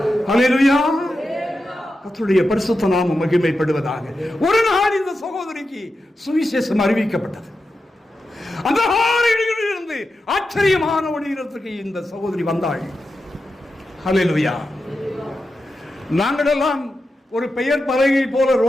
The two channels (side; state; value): both; normal; correlation 0.90